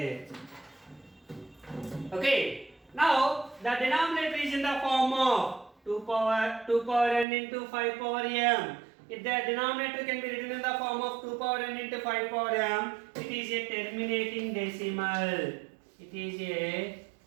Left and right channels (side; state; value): left; drops out; at 7.2 s